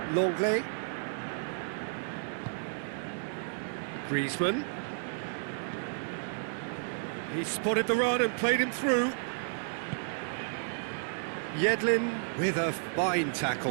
Longley. Griezmann. He spotted the run and played him through. Yedlin with a fine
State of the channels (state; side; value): silent; left; digital silence